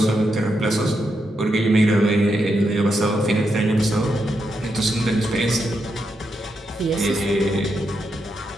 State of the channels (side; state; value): both; normal; correlation 0.83